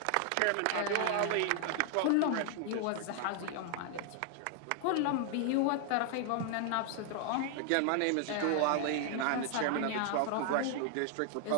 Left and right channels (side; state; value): both; different; correlation 0.00